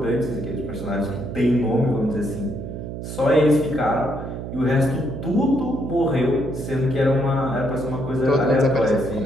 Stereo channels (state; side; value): noise; right; hum, 8 dB below the sound